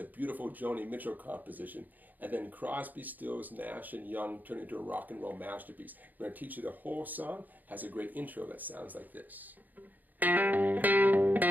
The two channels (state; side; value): late; left; 0.084 ms